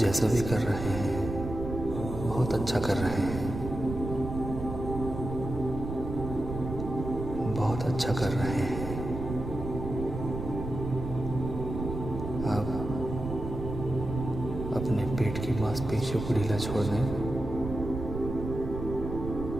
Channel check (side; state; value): right; noise; rumble, 6 dB below the sound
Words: भी कर रहे हैं बहुत अच्छा कर रहे हैं। बहुत अच्छा कर रहे हैं। आप अपने पेट की मांसपेशियों को ढीला छोड़ दें।